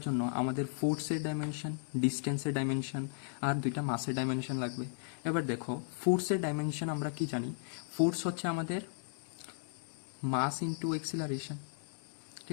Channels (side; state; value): right; silent; digital silence